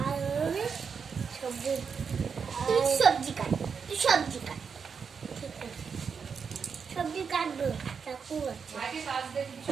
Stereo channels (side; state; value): left; quieter; 6.1 dB